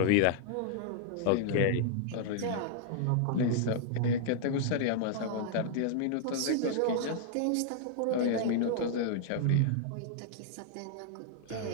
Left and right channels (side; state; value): both; different; correlation -0.01